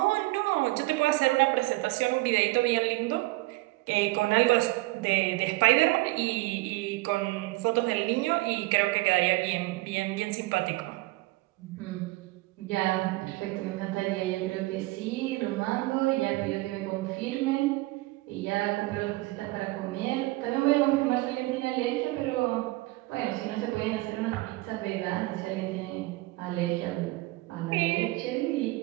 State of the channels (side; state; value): left; quieter; 21.0 dB